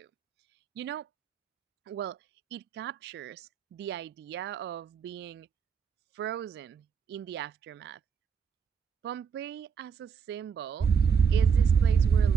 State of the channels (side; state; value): left; quieter; 6.6 dB